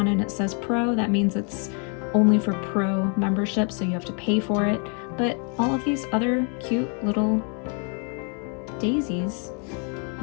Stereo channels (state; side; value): quieter; right; 39.3 dB